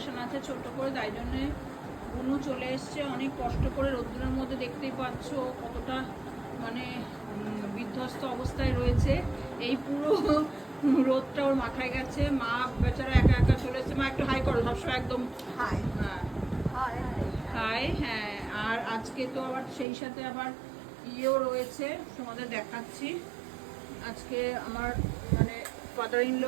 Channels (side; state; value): left; drops out; at 19.9 s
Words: আছে ছোট্ট করে, তাই জন্যে বুনু চলে এসছে অনেক কষ্ট করে রোদ্দুরের মধ্যে। দেখতেই পাচ্ছ কতটা বিধ্বস্ত অবস্থায় রয়েছে। এই পুরো রোদটা ওর মাথায় গেছে। মা বেচারা একা একা চলে এসছে। মা একটু হাই করো, সবসময় একদম হাই। হ্যাঁ হাই, হ্যাঁ। আর আজকে তো আবার সেই সাথে আবার ইয়েও রয়েছে, তোমাদের দেখাচ্ছি। আজকে আমার ফাদার ইন